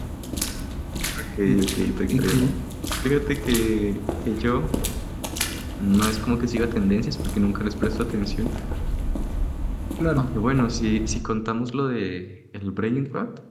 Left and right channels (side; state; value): both; identical; correlation 1.00